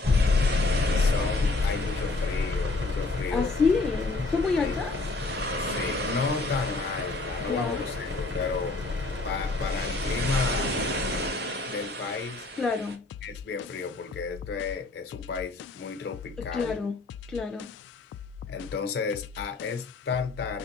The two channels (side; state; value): right; quieter; 3.4 dB